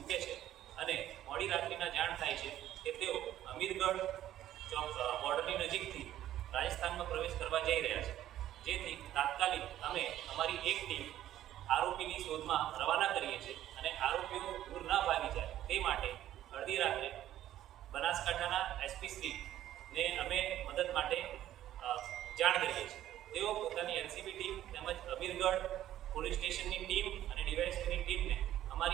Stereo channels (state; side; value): quieter; left; 12.6 dB